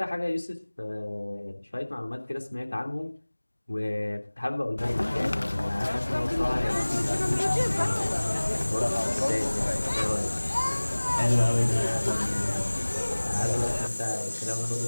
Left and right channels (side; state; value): both; inverted; correlation -1.00